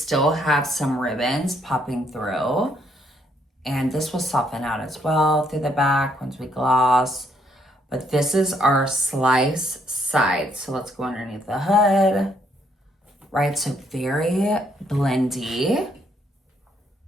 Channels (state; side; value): normal; both; correlation 0.71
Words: have some ribbons popping through. And this will soften out as well through the back once we gloss. But this is our slice side. So let's go underneath the hood, right? So very blendy,